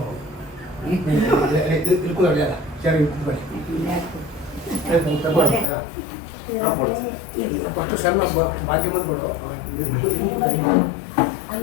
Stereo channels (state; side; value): drops out; right; at 5.7 s